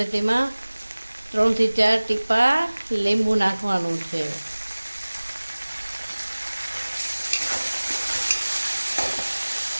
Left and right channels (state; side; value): inverted; both; correlation -1.00